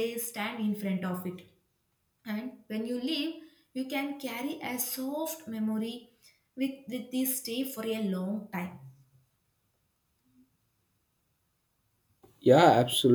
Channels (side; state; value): both; identical; correlation 1.00